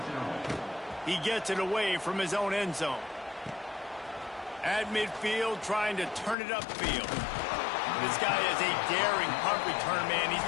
He gets it away from his own end zone. At midfield, trying to turn it upfield. This guy is a daring punt return man. He's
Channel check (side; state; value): right; drops out; at 6.4 s